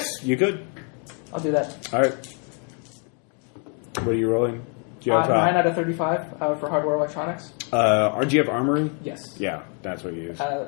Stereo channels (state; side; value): quieter; right; 39.5 dB